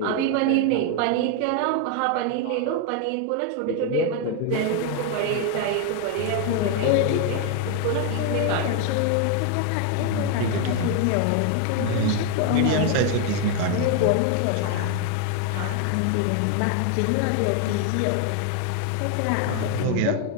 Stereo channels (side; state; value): both; different; correlation 0.01